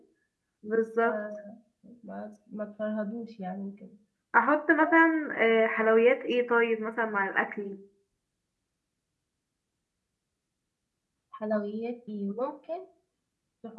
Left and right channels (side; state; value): both; identical; correlation 1.00